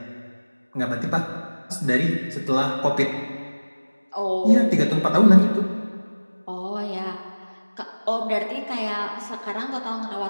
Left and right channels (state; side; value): inverted; both; correlation -1.00